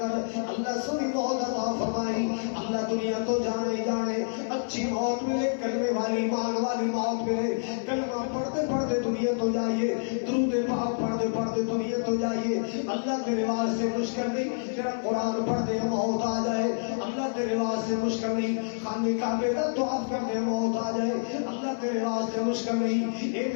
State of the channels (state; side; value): silent; right; 56 dB below the other